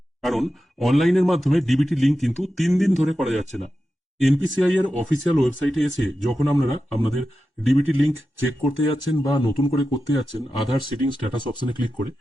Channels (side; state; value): both; normal; correlation 0.92